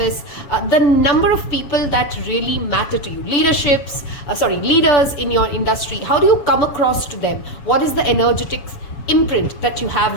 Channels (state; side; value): late; right; 7.1 ms